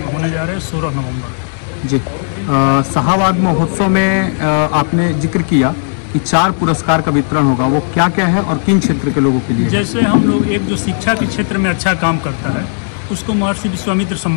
होने जा रहे हैं 16 नवंबर। जी, शाहाबाद महोत्सव में आपने जिक्र किया कि 4 पुरस्कार का वितरण होगा, वो क्या क्या है और किन क्षेत्र के लोगों के लिए? जैसे हम लोग एक जो शिक्षा के क्षेत्र में अच्छा काम करता है उसको महर्षि विश्वामित्र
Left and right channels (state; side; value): silent; right; digital silence